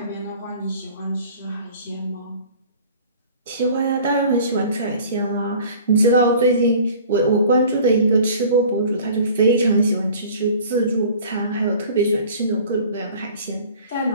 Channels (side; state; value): both; inverted; correlation -0.47